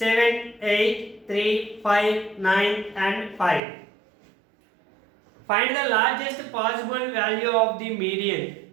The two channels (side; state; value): left; drops out; at 3.6 s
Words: 8, 3, 5, 9 and 5. Find the largest possible value of the median